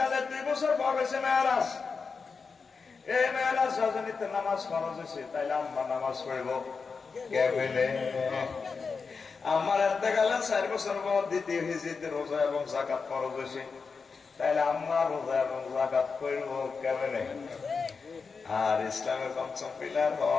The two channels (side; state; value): right; quieter; 5.0 dB